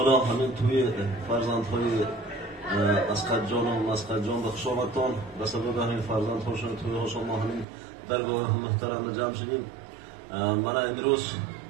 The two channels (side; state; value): left; drops out; at 7.7 s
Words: hamon to'y farzandhoy Asqatjon va Masqatjon va xushomadton va sabab hamon farzandhoshon to'y xushomadning dargohi muhtaram jamshidin. Mana imroz